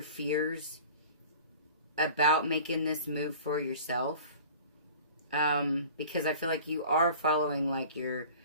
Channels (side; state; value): both; inverted; correlation -0.42